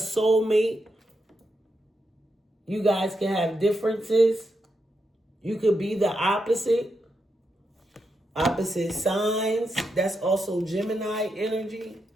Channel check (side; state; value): both; normal; correlation 0.84